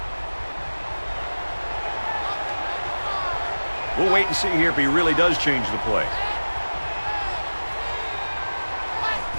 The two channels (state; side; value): inverted; both; correlation -1.00